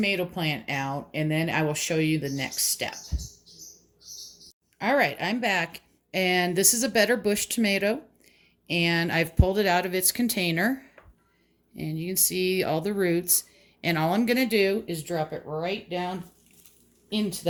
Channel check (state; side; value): identical; both; correlation 1.00